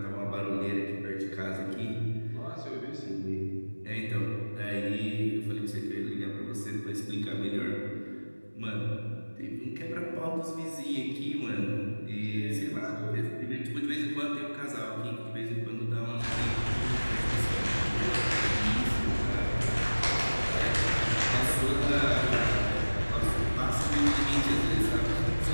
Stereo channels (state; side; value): inverted; both; correlation -1.00